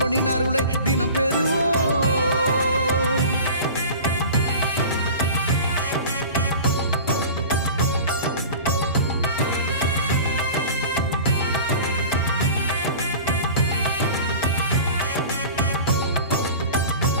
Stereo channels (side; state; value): both; inverted; correlation -0.38